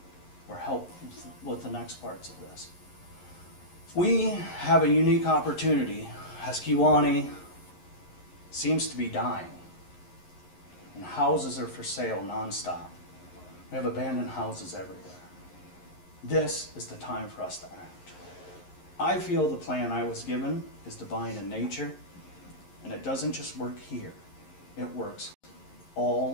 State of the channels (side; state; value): right; late; 11 ms